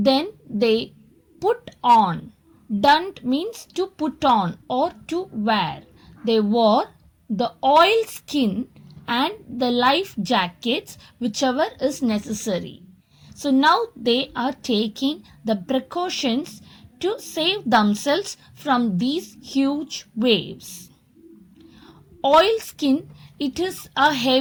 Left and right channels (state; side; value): identical; both; correlation 1.00